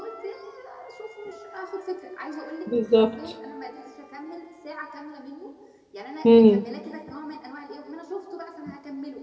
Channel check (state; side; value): identical; both; correlation 1.00